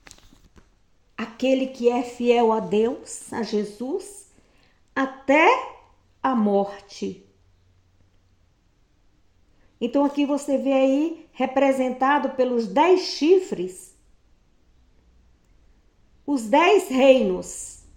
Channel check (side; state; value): both; identical; correlation 1.00